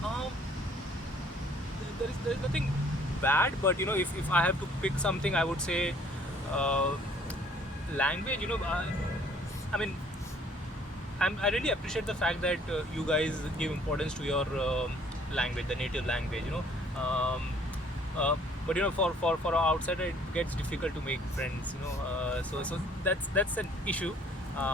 There is nothing bad, but if I have to pick something, I would say language. I really appreciate the fact that you guys give importance to your language, the native language. But for an outsider, it gets difficult to make friends. So that's an issue.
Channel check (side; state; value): both; normal; correlation 0.58